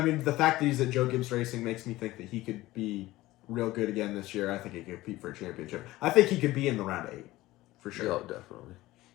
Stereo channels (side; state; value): right; quieter; 17.7 dB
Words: mean, the fact that he's at Joe Gibbs Racing makes me think that he could be real good again this year. I think he could compete for a championship. I think he could be in the round 8 for sure. Yeah, definitely.